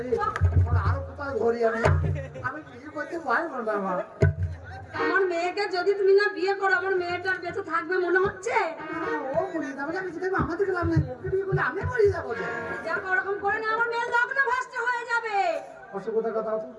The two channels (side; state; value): both; identical; correlation 1.00